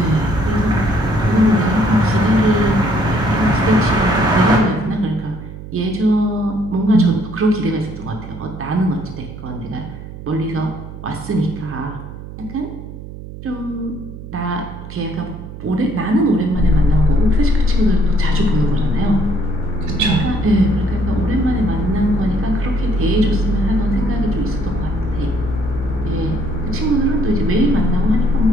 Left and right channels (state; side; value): noise; right; hum, 13 dB below the sound